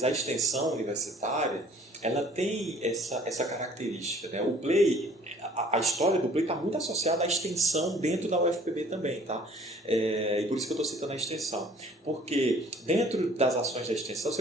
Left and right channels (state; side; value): normal; both; correlation 0.54